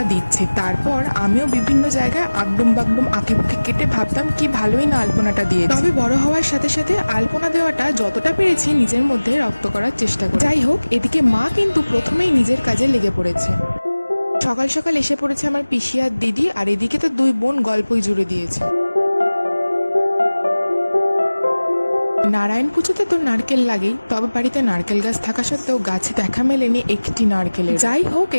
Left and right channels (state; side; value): inverted; both; correlation -1.00